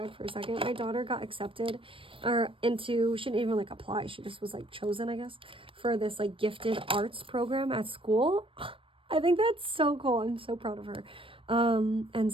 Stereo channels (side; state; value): left; late; 0.25 ms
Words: for a second, my daughter got accepted she didn't even like apply, she just was like chosen, I guess, for this like gifted arts program at school. I think that's so cool. I'm so proud of her. And